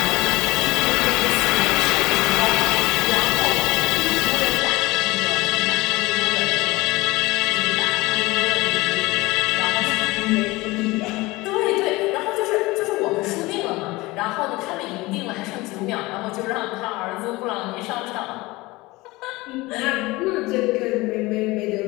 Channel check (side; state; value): right; quieter; 21.3 dB